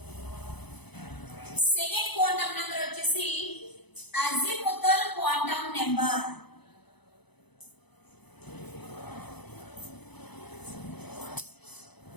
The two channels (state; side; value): late; right; 0.99 ms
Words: సెకండ్ క్వాంటం నెంబర్ వచ్చేసి azimuthal quantum number.